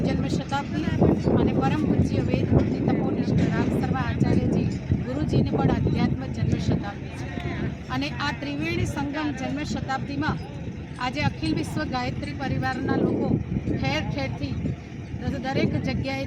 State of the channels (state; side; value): identical; both; correlation 1.00